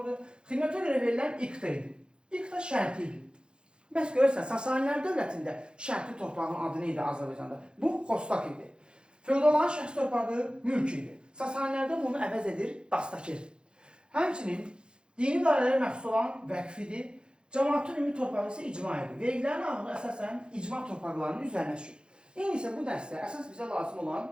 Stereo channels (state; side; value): late; left; 0.051 ms